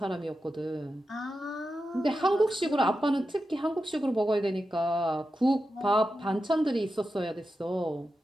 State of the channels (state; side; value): normal; both; correlation 0.90